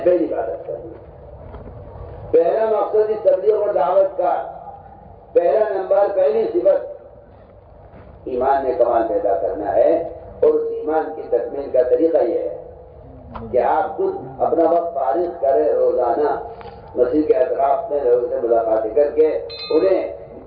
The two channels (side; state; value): both; identical; correlation 1.00